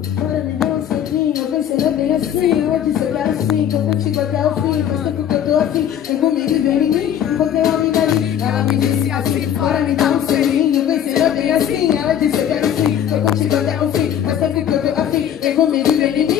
me dar um selinho, eu pensei bem assim. Eu disse eu quero sim, tô contigo até o fim. Faz tempo que eu tô assim, vem comigo e vem em mim. Encontrei uma amiga ali, ela me disse assim: bora me dar um selinho, eu pensei bem assim. Ela disse eu quero sim, tô contigo até o fim. Faz tempo que eu tô afim, vem comigo e vem em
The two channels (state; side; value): quieter; right; 9.8 dB